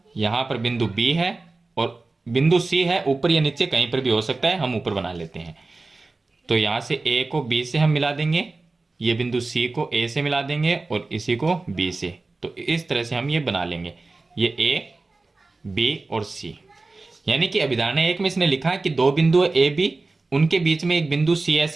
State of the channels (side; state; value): left; quieter; 3.5 dB